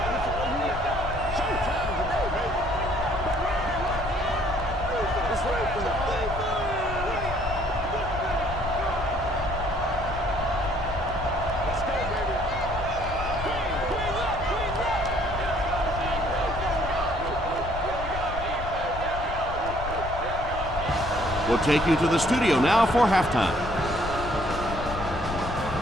We'll take you to the studio now for halftime.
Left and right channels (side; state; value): left; noise; rumble, 8 dB below the sound